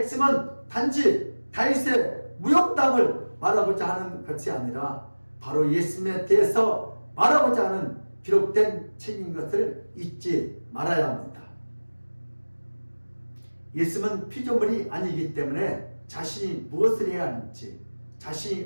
단지 다윗의 무용담을 말하고자 하는 것이 아니라 바로 예수님에 대해서 말하고자 하는 기록된 책인 것을 잊지 말아야 합니다. 예수님은 피조물이 아니기 때문에 자신이 무엇을 해야 하는지,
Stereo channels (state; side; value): inverted; both; correlation -1.00